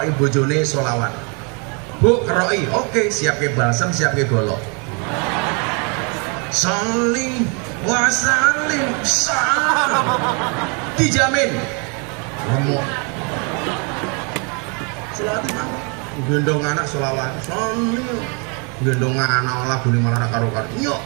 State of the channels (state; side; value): quieter; left; 34.8 dB